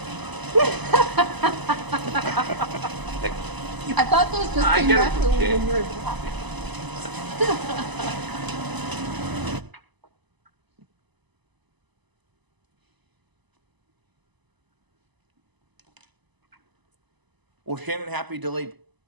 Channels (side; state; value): left; late; 1.0 ms